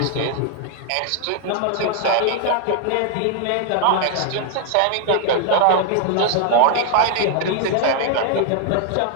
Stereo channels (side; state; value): both; different; correlation 0.00